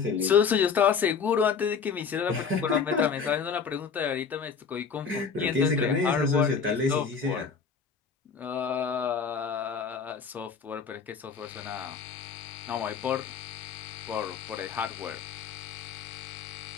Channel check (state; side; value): quieter; right; 6.0 dB